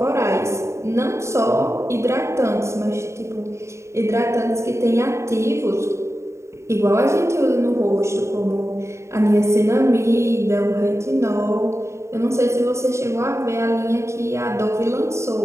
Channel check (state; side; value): late; left; 0.14 ms